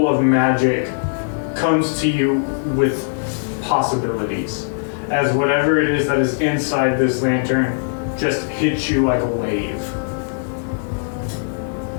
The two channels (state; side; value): silent; right; digital silence